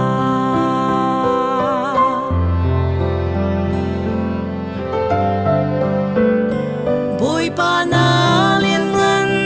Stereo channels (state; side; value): identical; both; correlation 1.00